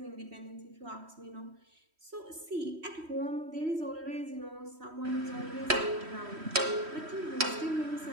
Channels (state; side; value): late; left; 3.1 ms